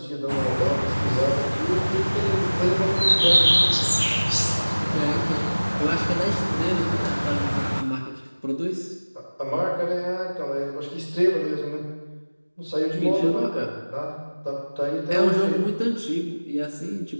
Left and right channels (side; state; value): both; inverted; correlation -1.00